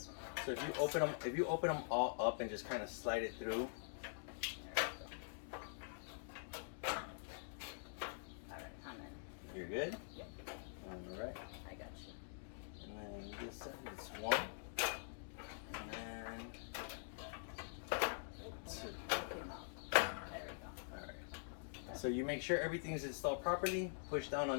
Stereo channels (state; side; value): silent; right; digital silence